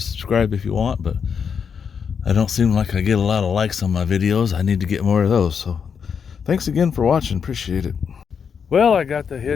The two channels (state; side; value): quieter; right; 6.7 dB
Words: if you want, but I don't seem like I get a lot of likes on my videos. I need to get more of those. So Thanks again for watching. Appreciate it. Well, I got the